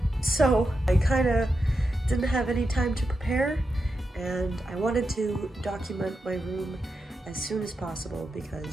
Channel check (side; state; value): both; normal; correlation 0.88